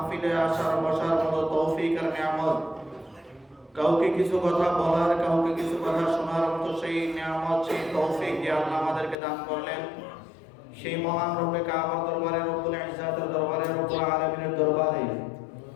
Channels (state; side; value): drops out; right; at 9.2 s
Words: আসার বসার মতো তৌফিক আর নিয়ামত, কাউকে কিছু কথা বলার, কাউকে কিছু কথা শোনার মতো সেই নিয়ামত, সেই তৌফিক যে আল্লাহ আমাদেরকে দান করলেন, সেই মহান রব্বে কাবার দরবারে, রব্বুল ইজ্জাতের দরবারে, রব্বুল আলামিনের দরবারে